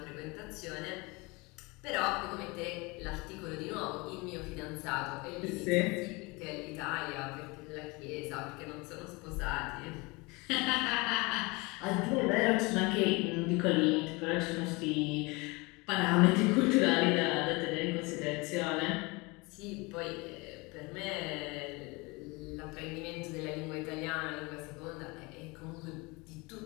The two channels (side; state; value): right; quieter; 25.9 dB